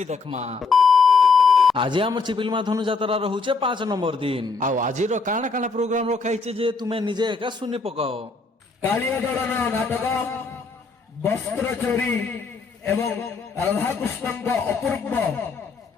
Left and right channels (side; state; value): right; quieter; 4.2 dB